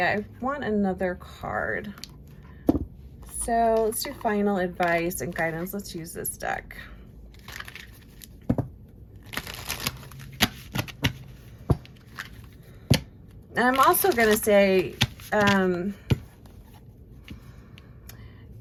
I want another card. So let's do final advice and guidance. Let's use this deck. And I'm also going to say,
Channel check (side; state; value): both; identical; correlation 1.00